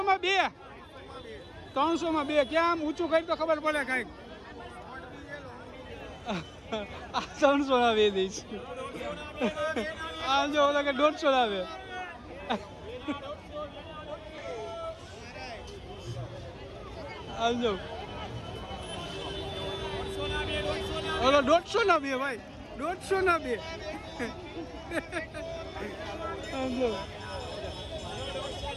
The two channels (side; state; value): both; identical; correlation 1.00